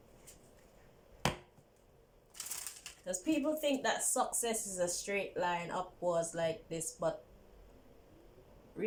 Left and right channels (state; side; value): identical; both; correlation 1.00